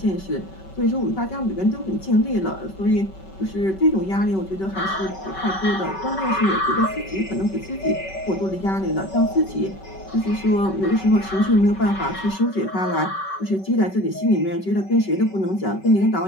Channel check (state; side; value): late; right; 5.2 ms